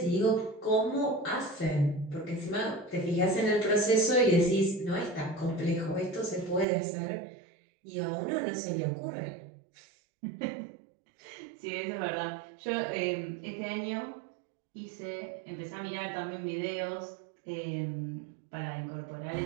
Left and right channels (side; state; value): left; drops out; at 6.7 s